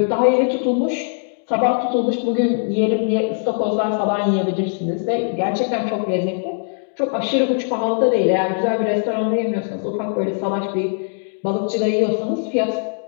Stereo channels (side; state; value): right; silent; digital silence